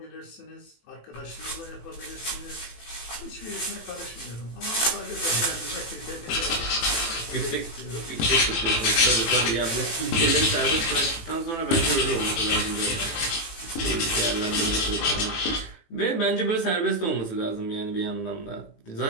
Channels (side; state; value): right; late; 18 ms